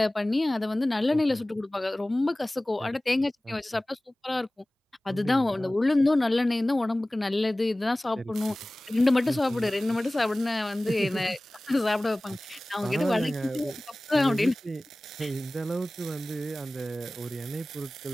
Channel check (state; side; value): normal; both; correlation 0.98